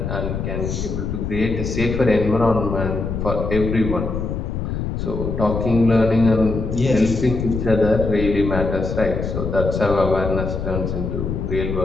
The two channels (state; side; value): noise; left; rumble, 3 dB below the sound